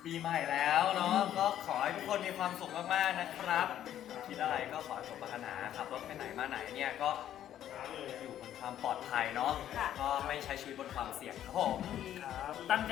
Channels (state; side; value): quieter; right; 11.2 dB